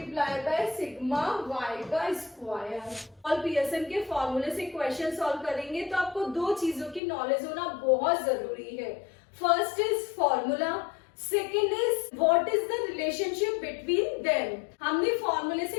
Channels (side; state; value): right; drops out; at 7.0 s